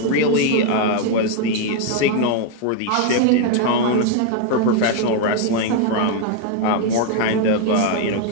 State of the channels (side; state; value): both; different; correlation 0.01